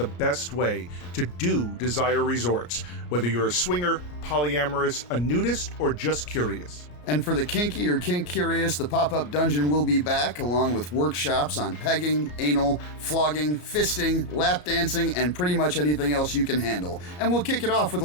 best way to do Desire Resorts, whether you're a swinger, polyamorous, a nudist, or just curious. And for the kinky or kink curious, the pop-up dungeon will be back, along with workshops on pegging, anal, flogging, fisting, lap dancing, and pretty much anything else you can handle. And we'll kick it off with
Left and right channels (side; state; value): right; late; 34 ms